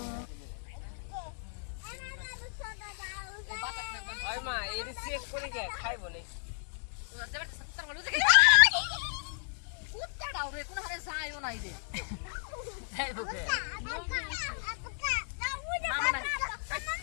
ওই মা এই চেক করে কে খাইব না কুত্তাটাও রে কোন হারে যায়ও নাই রে খাইব কে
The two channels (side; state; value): right; silent; 55 dB below the other